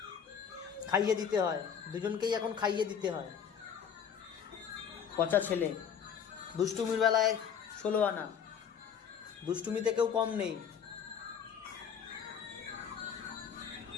খাইয়ে দিতে হয়, দুজনকেই এখন খাইয়ে দিতে হয়। পচা ছেলে। দুষ্টুমির বেলায় 16 আনা, দুষ্টুমিতে কেউ কম নেই।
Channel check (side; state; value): right; quieter; 7.6 dB